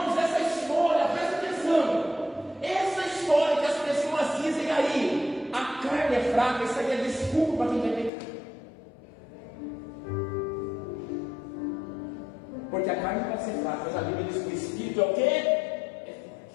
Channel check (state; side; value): drops out; right; at 8.1 s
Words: essa história, presta atenção. Essa história que as pessoas dizem aí, a carne é fraca, isso aí é desculpa para quem vai pecar. Porque a carne pode ser fraca, mas a Bíblia diz que o Espírito é o quê? É